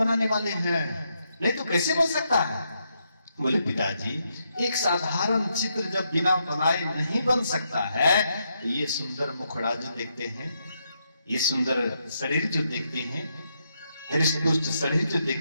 वाले हैं, नहीं तो कैसे बन सकता है? बोले पिताजी एक साधारण चित्र जब बिना बनाए नहीं बन सकता है, ये सुंदर मुखड़ा जो देखते हैं, ये सुंदर शरीर जो देखते हैं, हृष्ट-पुष्ट शरीर जो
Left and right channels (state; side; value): inverted; both; correlation -0.80